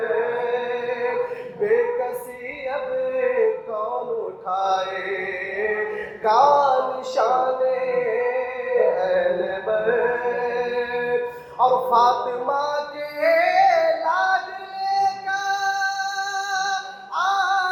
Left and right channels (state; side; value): identical; both; correlation 1.00